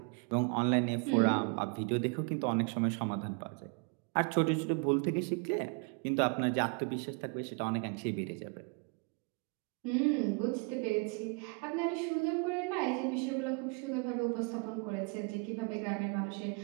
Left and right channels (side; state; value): left; quieter; 33.1 dB